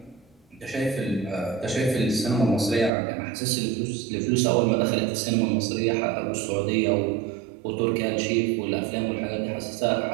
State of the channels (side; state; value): left; drops out; at 2.9 s